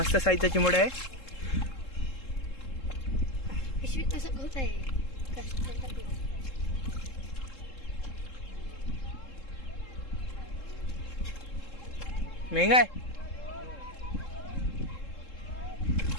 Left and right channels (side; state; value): right; late; 3.7 ms